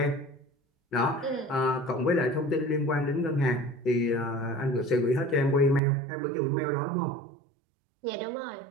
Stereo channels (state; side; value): drops out; left; at 5.8 s